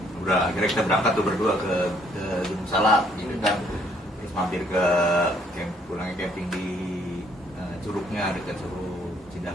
Udah akhirnya kita berangkat tuh berdua ke Gunung Salak gitu kan. Terus mampir ke pulangnya camping di Curugnya dekat Curug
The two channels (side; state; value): both; normal; correlation 0.65